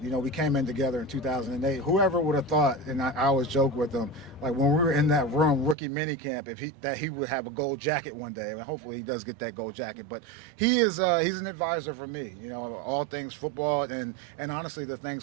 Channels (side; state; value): left; drops out; at 5.8 s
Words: You know, we came in together in 2008. Whoever would have thought, and I always joke with him, like when we were in that room, rookie minicamp, that he would have a gold jacket one day. And hopefully he does get that gold jacket. But he's an advisor for me. You know, all things football and honestly the